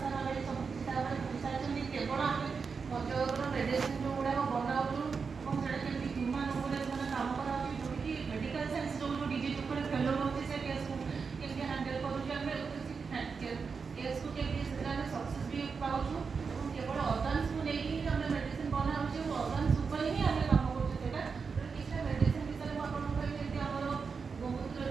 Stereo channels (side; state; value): left; quieter; 5.3 dB